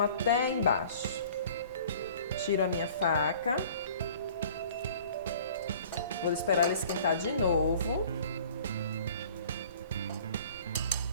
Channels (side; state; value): both; inverted; correlation -0.49